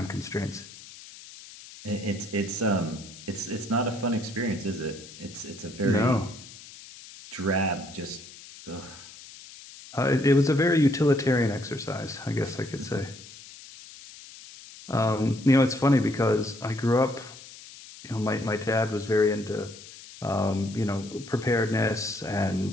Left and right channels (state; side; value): noise; left; hiss, 17 dB below the sound